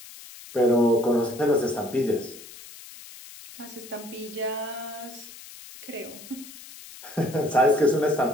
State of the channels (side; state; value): left; noise; hiss, 17 dB below the sound